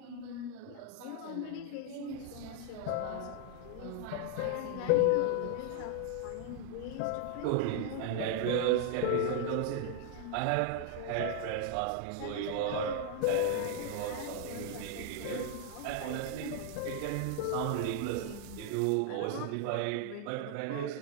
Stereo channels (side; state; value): both; different; correlation 0.00